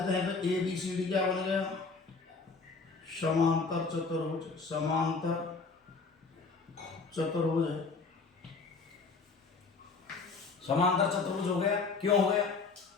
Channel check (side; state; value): right; quieter; 4.4 dB